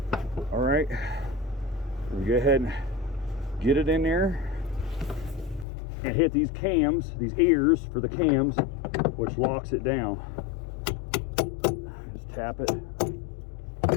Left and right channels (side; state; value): right; drops out; at 5.7 s